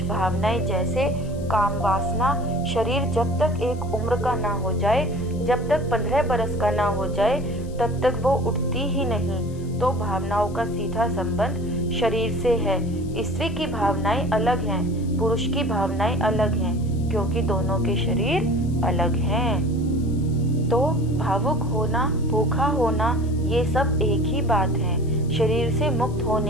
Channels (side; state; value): left; noise; hiss, 25 dB below the sound